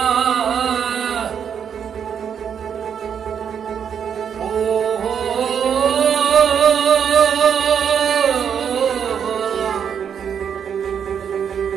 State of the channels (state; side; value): quieter; left; 7.8 dB